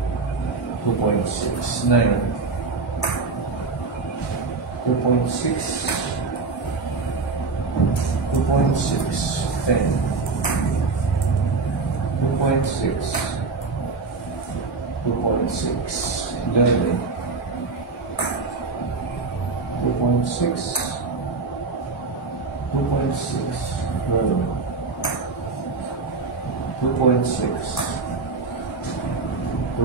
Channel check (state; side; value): quieter; left; 4.2 dB